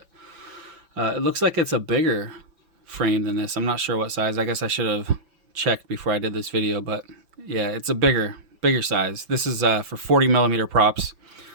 it looks like it's a bigger frame than this. I'm not sure what size. I guess I should have checked before I did this video, but yeah, it's a bigger size. This is for 40 millimeter props,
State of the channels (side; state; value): left; late; 5.8 ms